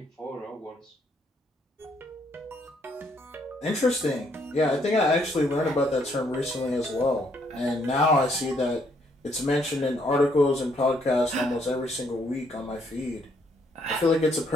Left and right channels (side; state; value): both; normal; correlation 0.70